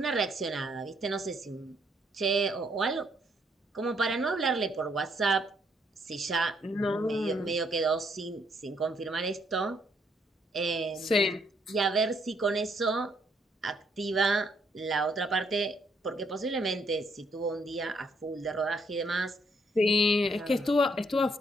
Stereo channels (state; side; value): normal; both; correlation 0.71